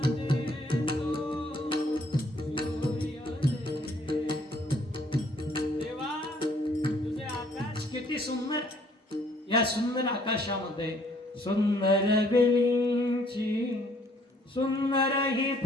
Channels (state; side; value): normal; both; correlation 0.63